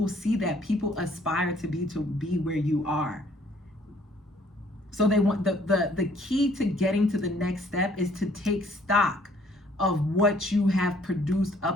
see that. People aspire to be where you are. So they want the key to getting to the next step is to take stock of what you have produced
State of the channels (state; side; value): normal; both; correlation 0.61